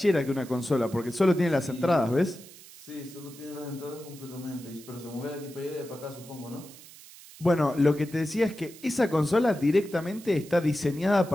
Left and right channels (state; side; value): noise; right; hiss, 19 dB below the sound